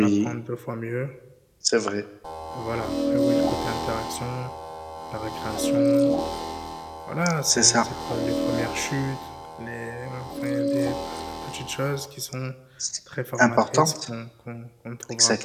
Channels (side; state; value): both; identical; correlation 1.00